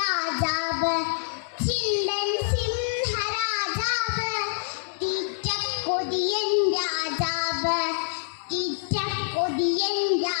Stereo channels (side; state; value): right; silent; 61 dB below the other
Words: ചിണ്ടൻ സിംഹരാജാവ്, തീറ്റക്കൊതിയൻ രാജാവ്, തീറ്റക്കൊതിയൻ